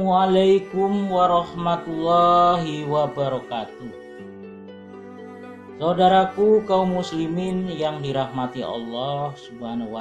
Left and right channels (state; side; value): identical; both; correlation 1.00